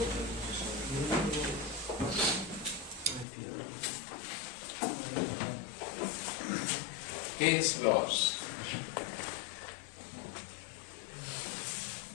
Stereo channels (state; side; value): drops out; right; at 3.2 s